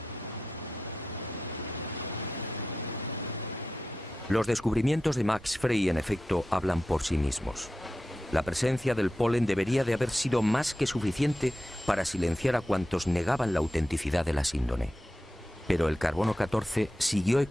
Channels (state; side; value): normal; both; correlation 0.91